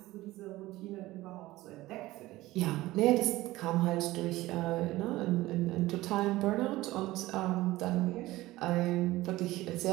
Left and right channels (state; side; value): quieter; left; 17.8 dB